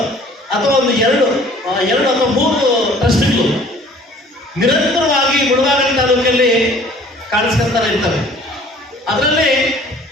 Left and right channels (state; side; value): normal; both; correlation 0.52